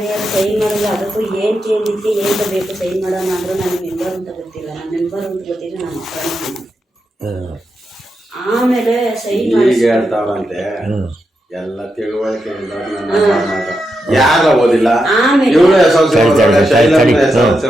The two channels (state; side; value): normal; both; correlation 0.86